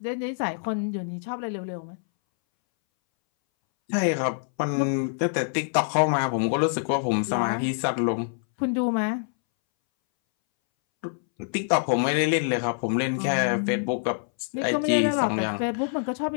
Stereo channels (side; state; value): right; silent; 61 dB below the other